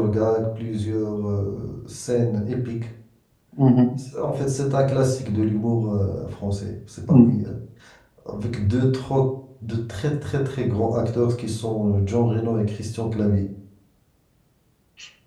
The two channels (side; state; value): both; identical; correlation 1.00